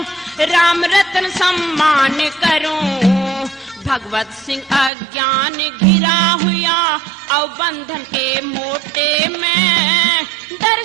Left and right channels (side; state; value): left; drops out; at 4.9 s